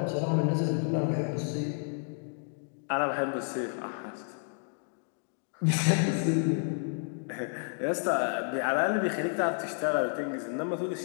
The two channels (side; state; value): right; silent; 57 dB below the other